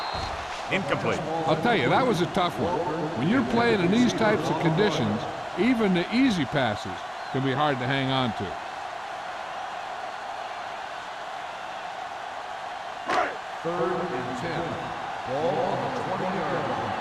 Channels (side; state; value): both; identical; correlation 1.00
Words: Incomplete. I'll tell you, that was a tough one. When you're playing in these types of conditions, even the easy passes can be hard to hang on to. Third and 10. Ball on the 20-yard line.